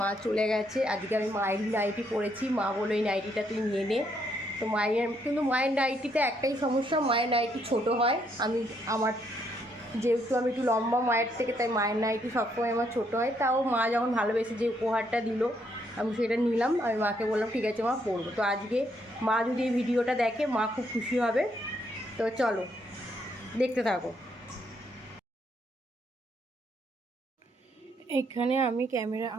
চলে গেছে। আজকে আমি মায়েরই নাইটি পরেছি, মা বলো এই নাইটিটা তুই নিয়ে নে। তো কিন্তু মায়ের নাইটিতে একটাই সমস্যা, মায়ের নাইটি ছোট হয়। যেহেতু আমি একটু লম্বা মায়ের থেকে, তাই মায়ের নাইটি সবসময় আমার ছোটো হয়। তাও মা যখন ভালোবেসে যে উপহারটা দিল, আমি সেটা নিলাম। আমি মাকে বললাম ঠিক আছে মা, পরবো। তো আজকে মা যদি এই ভিডিওটা দেখে, মা খুব খুশি হবে। তো চলো দেখতে থাকো। এখানে আমি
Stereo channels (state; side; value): normal; both; correlation 0.73